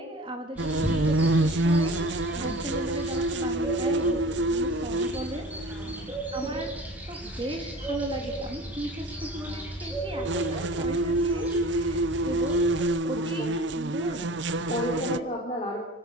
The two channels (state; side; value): normal; both; correlation 0.41